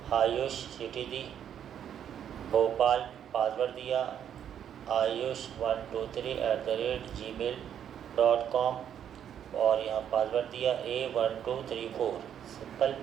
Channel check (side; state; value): left; quieter; 9.3 dB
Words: आयुष, सिटी दी भोपाल, पासवर्ड दिया आयुष 123@gmail.com, और यहाँ पासवर्ड दिया A1234, सिंपल।